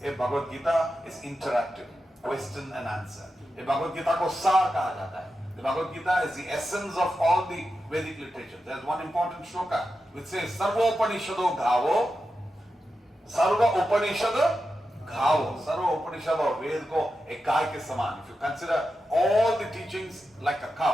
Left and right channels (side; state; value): both; normal; correlation 0.90